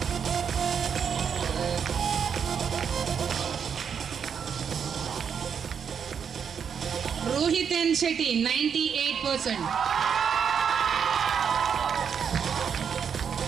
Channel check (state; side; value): quieter; left; 7.2 dB